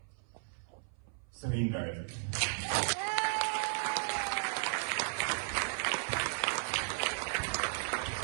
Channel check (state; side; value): silent; left; 54 dB below the other